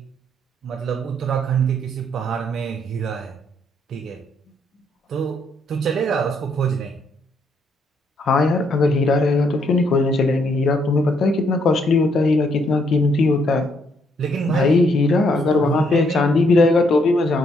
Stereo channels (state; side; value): normal; both; correlation 0.72